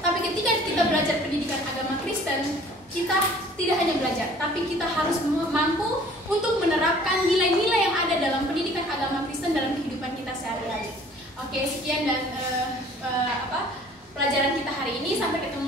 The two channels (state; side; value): normal; both; correlation 0.52